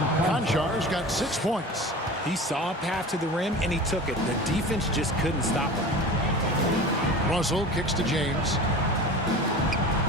Conchar's got 6 points. He saw a path to the rim, and he took it. The defense just couldn't stop him. Russell kicks to James.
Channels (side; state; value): both; normal; correlation 0.35